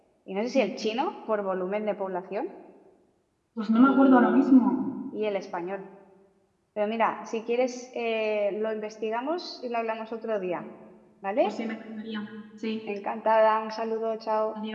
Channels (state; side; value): identical; both; correlation 1.00